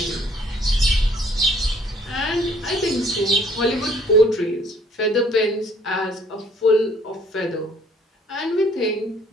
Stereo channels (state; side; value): normal; both; correlation 0.59